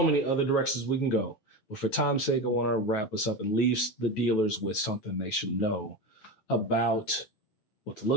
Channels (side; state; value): right; late; 9.3 ms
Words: many other directions we can go. But for time's sake, I want to wrap us up and leave the dealers with something they should know about what to